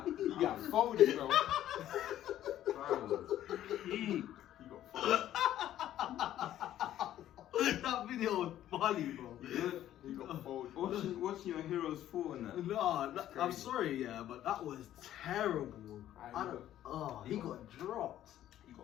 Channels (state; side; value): quieter; right; 12.3 dB